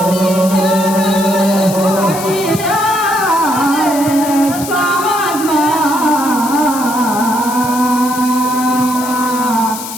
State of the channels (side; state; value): left; noise; hiss, 10 dB below the sound